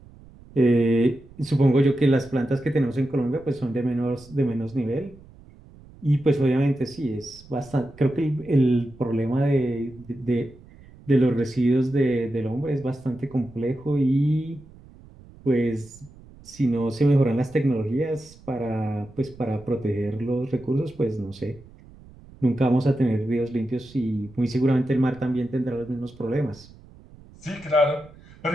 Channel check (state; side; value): noise; right; rumble, 22 dB below the sound